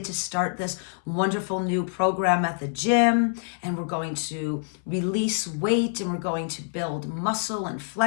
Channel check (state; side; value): silent; right; 61 dB below the other